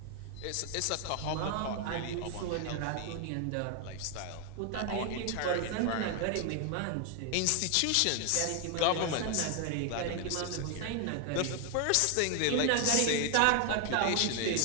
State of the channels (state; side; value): different; both; correlation 0.00